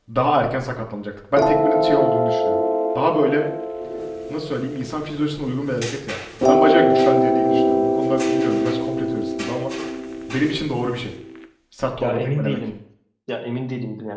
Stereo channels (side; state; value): both; identical; correlation 1.00